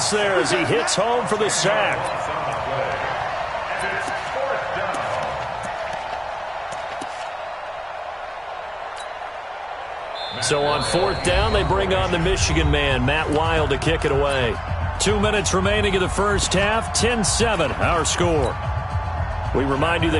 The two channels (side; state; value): both; identical; correlation 1.00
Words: there as he hits home for the sack. So on 4th down, they bring on the Michigan man, Matt Wild, to kick it away. 2 minutes remaining in the 1st half, 10-7, our score. We remind you